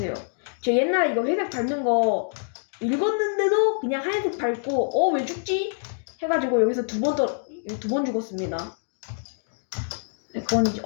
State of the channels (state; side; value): silent; right; digital silence